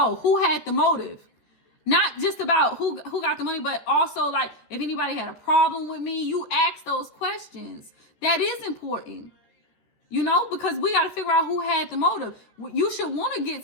Who had the motive? Not just about who got the money, but also like if anybody had a problem with me, you ask those questions. That is important, you know, because we got to figure out who had the motive. You should want to get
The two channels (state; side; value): late; right; 14 ms